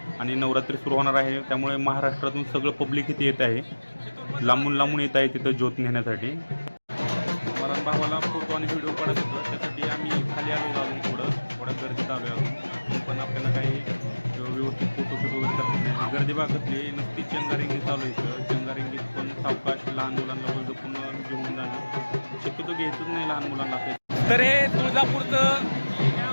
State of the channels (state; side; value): inverted; both; correlation -1.00